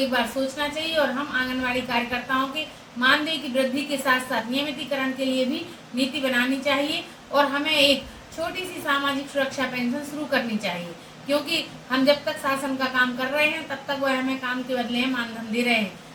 बार सोचना चाहिए और हम आंगनवाड़ी कार्यकर्ताओं के मानदेय की वृद्धि के साथ साथ नियमितीकरण के लिए भी नीति बनानी चाहिए और हमें एक छोटी सी सामाजिक सुरक्षा पेंशन शुरू करनी चाहिए। क्योंकि हम जब तक शासन का काम कर रहे हैं, तब तक वह हमें काम के बदले में मानधन दे रहे हैं।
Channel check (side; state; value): both; identical; correlation 1.00